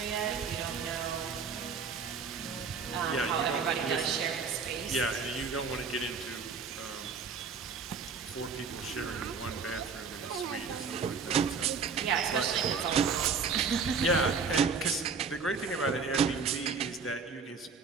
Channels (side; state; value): left; quieter; 5.3 dB